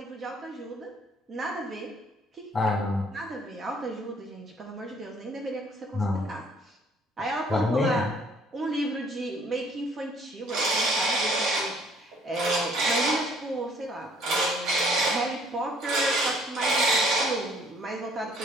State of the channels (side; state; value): both; normal; correlation 0.60